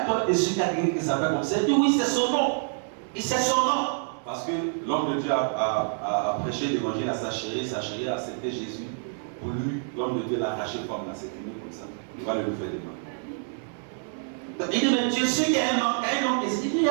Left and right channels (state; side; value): silent; left; digital silence